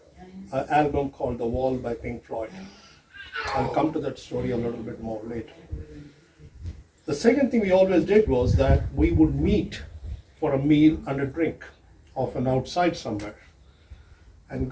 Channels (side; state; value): both; identical; correlation 1.00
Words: album called The Wall by Pink Floyd. I'll come to that story a little bit more later. The second thing we always did was that we would meet for a meal and a drink, often outside somewhere.